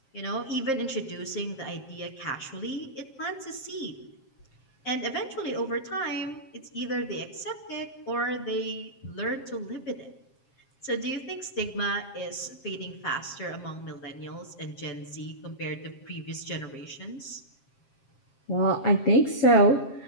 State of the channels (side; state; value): right; late; 7.5 ms